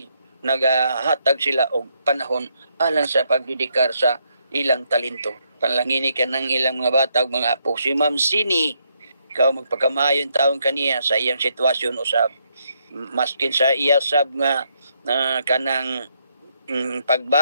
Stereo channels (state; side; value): inverted; both; correlation -0.76